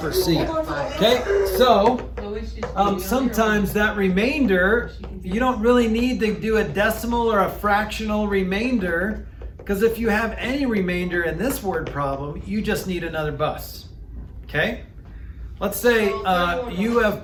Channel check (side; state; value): both; identical; correlation 1.00